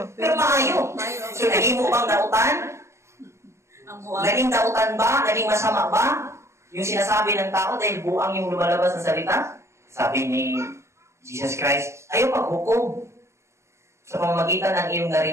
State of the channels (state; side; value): late; left; 0.14 ms